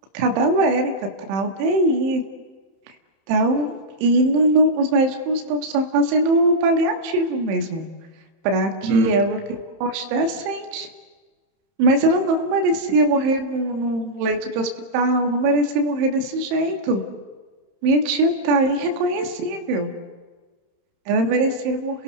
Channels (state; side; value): late; left; 31 ms